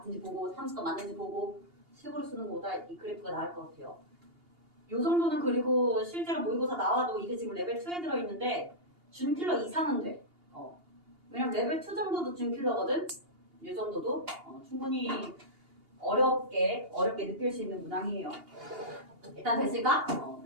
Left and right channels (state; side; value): late; left; 2.8 ms